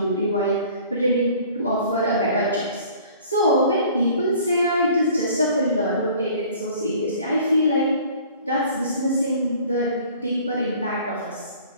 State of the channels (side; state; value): both; inverted; correlation -0.50